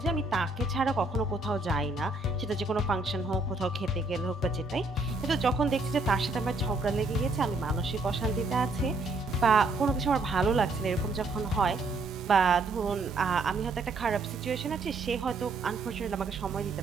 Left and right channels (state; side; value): quieter; left; 3.2 dB